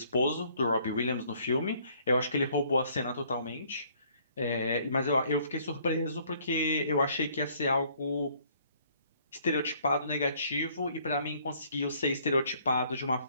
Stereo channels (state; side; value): inverted; both; correlation -0.62